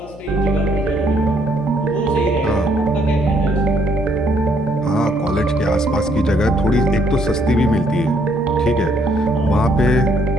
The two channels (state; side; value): noise; left; hum, 20 dB below the sound